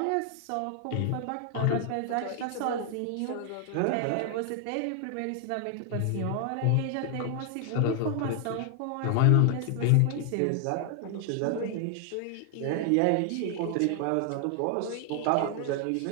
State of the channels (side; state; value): both; different; correlation 0.00